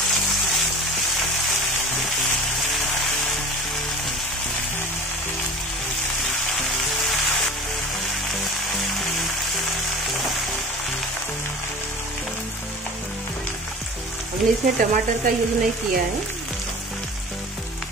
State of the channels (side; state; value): both; normal; correlation 0.38